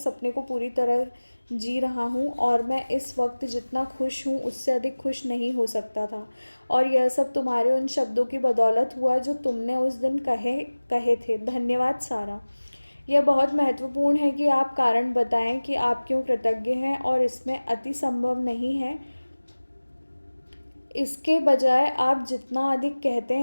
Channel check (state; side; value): inverted; both; correlation -1.00